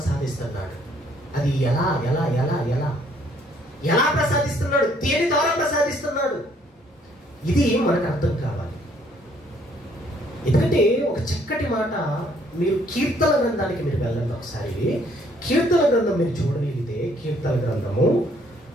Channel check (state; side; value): normal; both; correlation 0.64